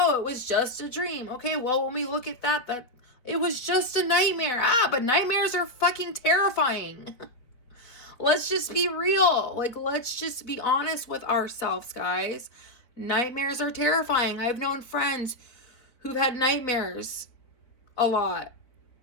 it was just a dream. Okay, well, when we look at that it was just a nightmare. But nightmares are fucking terrifying. Let's just be real. Like, let's just be honest with ourselves, guys. Nightmares are terrifying. I've known friends who've had nightmares a lot.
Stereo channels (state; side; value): late; right; 4.3 ms